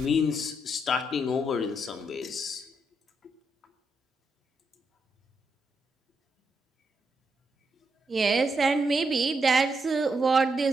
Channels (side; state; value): both; normal; correlation 0.81